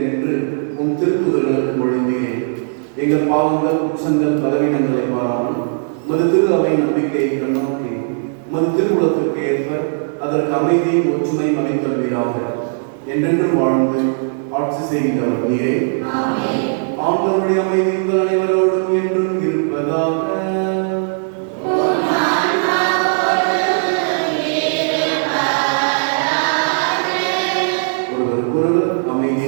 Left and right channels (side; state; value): left; silent; digital silence